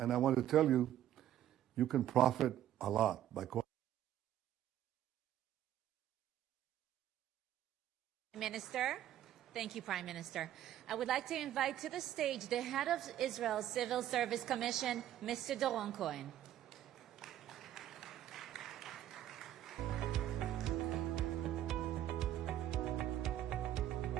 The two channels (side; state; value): left; quieter; 11.9 dB